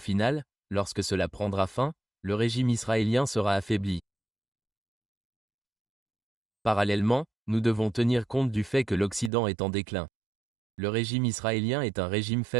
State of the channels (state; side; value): drops out; left; at 9.3 s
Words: lorsque cela prendra fin, le régime israélien sera affaibli. Parallèlement, nous devons tenir compte du fait que l'Occident est en déclin. Le régime israélien est un régime